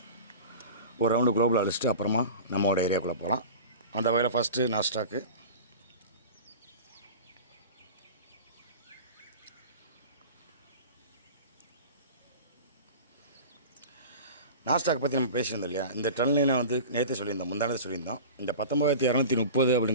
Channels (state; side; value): inverted; both; correlation -0.35